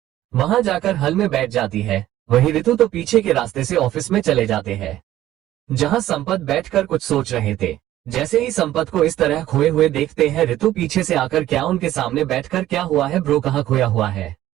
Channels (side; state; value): left; quieter; 13.7 dB